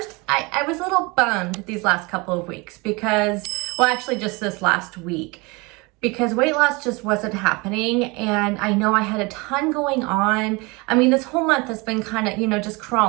I was a little bummed these last couple of weeks because, well, actually just this last week, because weight loss just wasn't happening. And I know I had a ton going on. I mean, this whole month has been kind of, just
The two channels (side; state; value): left; quieter; 26.4 dB